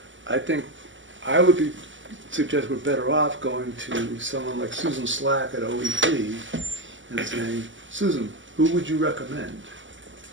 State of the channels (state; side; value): late; left; 0.55 ms